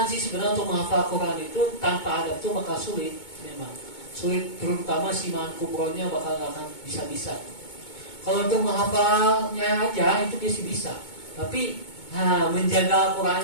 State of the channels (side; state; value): right; late; 2.2 ms